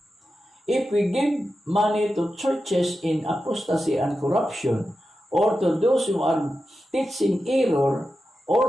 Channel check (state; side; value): normal; both; correlation 0.91